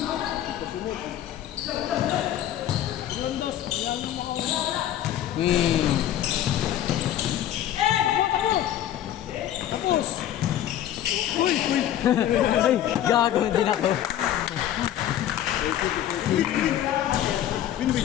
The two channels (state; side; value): quieter; right; 11.7 dB